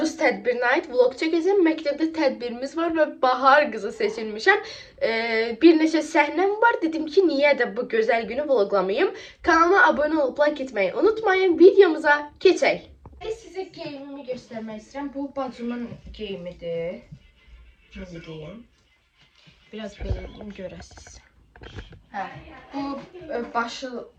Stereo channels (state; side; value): identical; both; correlation 1.00